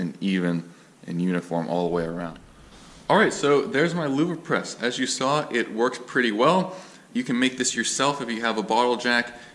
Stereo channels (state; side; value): identical; both; correlation 1.00